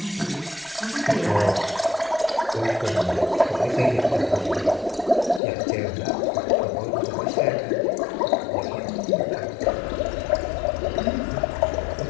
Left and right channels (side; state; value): right; drops out; at 5.4 s